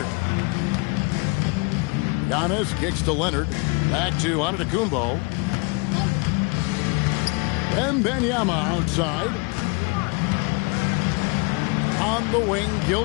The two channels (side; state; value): right; quieter; 31.0 dB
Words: Giannis kicks to Leonard. Back to Antetokounmpo. Wembanyama outside. On the wing,